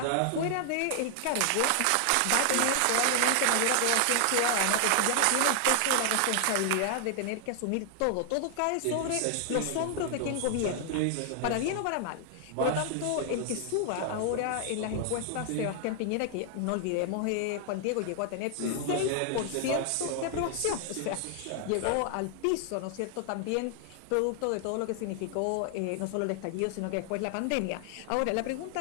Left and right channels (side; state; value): both; different; correlation 0.00